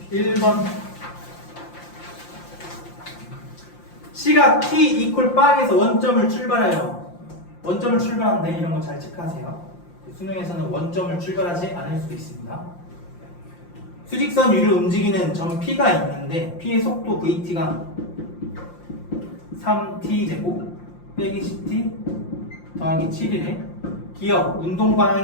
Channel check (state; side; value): late; right; 5.7 ms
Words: 11번 C가 T 이퀄 빵에서 원점을 출발해요. 원점을 출발하는데 이런 거 잘 체크하세요. 수능에서는 원점을 출발하지 않을 수도 있습니다. 수직선 위를 움직이는 점 P가 있는데 P의 속도 VT가 3T제곱 빼기 10T 더하기 7이래. 기억, 운동